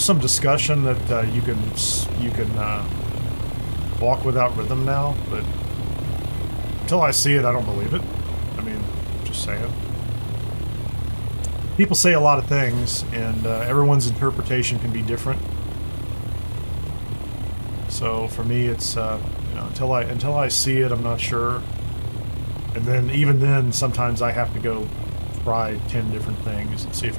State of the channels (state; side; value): inverted; both; correlation -1.00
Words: some discussion that you can walk without rhythm now, but until I see it, I don't believe it. I mean, just saying. People say a lot of things, and everyone's interpretation can be different. So for me, it's you know, until I see it, I'm not sure. And then even then, sometimes I have to go try 10 different things and see if